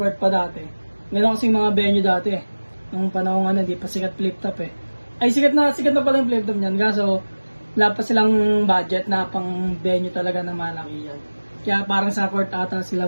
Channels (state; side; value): inverted; both; correlation -1.00